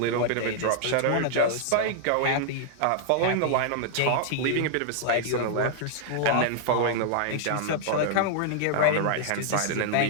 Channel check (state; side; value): different; both; correlation -0.01